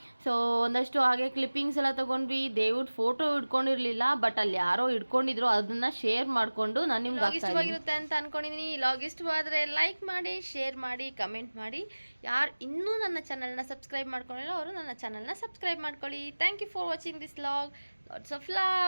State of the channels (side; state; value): both; inverted; correlation -1.00